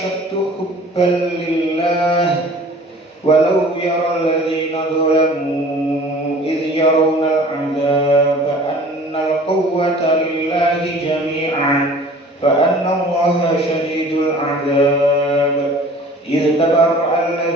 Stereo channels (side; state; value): both; normal; correlation 0.47